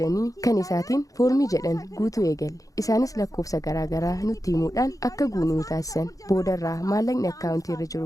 kan isaatiin foormii jedhan guutuu eegalle isaanis lakkoofsa garaagaraa nutti himuudhaan akka guunuu taasisan boodarraa maallaqni akkaawuntii irra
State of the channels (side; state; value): right; late; 0.17 ms